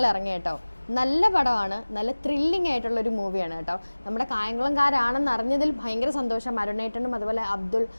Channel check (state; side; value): inverted; both; correlation -1.00